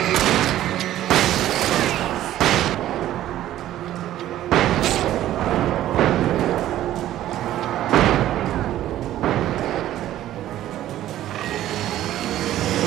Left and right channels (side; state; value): left; quieter; 13.2 dB